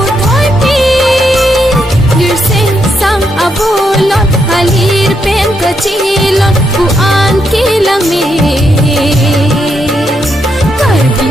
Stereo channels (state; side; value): normal; both; correlation 0.79